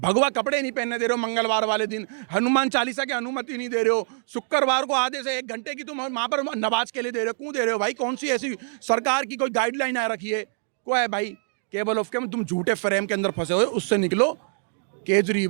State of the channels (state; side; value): silent; left; digital silence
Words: कपड़े नहीं पहनने दे रहे हो, मंगलवार वाले दिन हनुमान चालीसा की अनुमति नहीं दे रहे हो, शुक्रवार को आधे से 1 घंटे की तुम वहां पर नमाज के लिए दे रहे हो। क्यों दे रहे हो भाई? कौन सी ऐसी सरकार की कोई गाइडलाइन आ रखी है? को है भाई? केवल ऑफ के तुम झूठे फ्रेम के अंदर फंसे हुए, उससे निकलो।